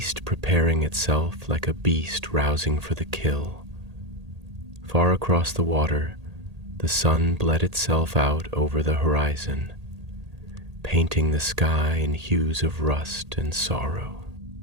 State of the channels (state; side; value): late; left; 1.8 ms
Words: preparing itself like a beast rousing for the kill. Far across the water, the sun bled itself out over the horizon, painting the sky in hues of rust and sorrow.